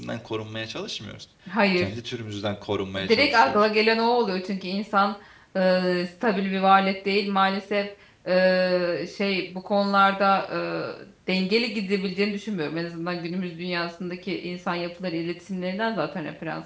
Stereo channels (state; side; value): identical; both; correlation 1.00